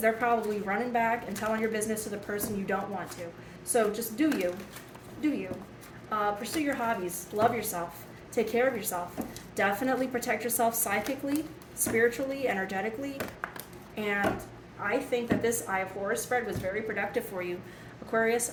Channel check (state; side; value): identical; both; correlation 1.00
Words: they're probably running back and telling your business to the person you don't want to. So just do you. Pursue your hobbies. Love yourself. Take care of yourself. Definitely protect yourself psychically, spiritually, energetically. And I think that this Eye of Horus spread was very productive for you. Aquarius,